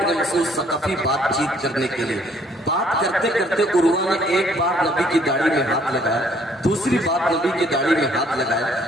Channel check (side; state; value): both; normal; correlation 0.62